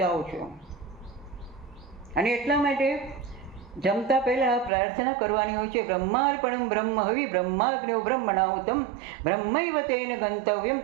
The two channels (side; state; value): left; drops out; at 4.7 s